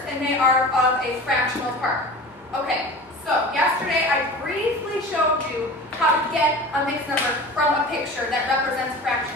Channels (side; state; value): both; normal; correlation 0.36